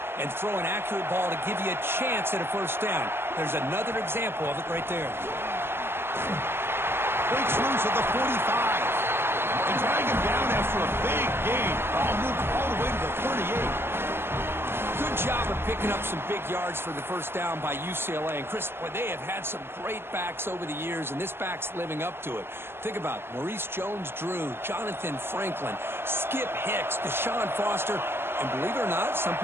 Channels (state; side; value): late; left; 0.11 ms